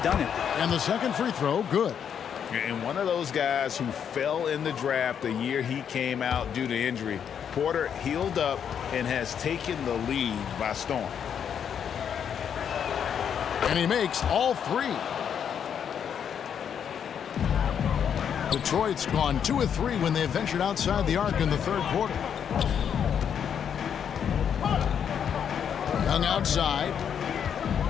done it. And the second free throw, good. And one of those guys who fell in the draft the year he came out due to injury, Porter healed up and has taken the lead by storm. And he makes all 3. Detroit's gone 2 of 3 when they ventured outside the arc in the third quarter. Young outside.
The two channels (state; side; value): quieter; right; 8.1 dB